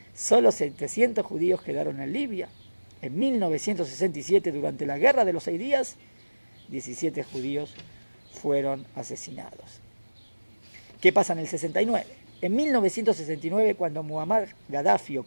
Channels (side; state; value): both; inverted; correlation -1.00